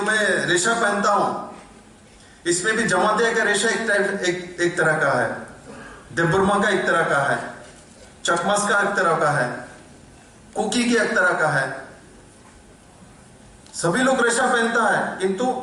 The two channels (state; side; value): identical; both; correlation 1.00